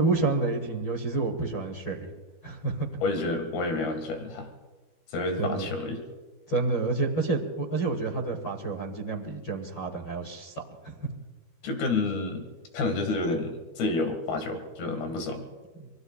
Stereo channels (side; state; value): right; late; 12 ms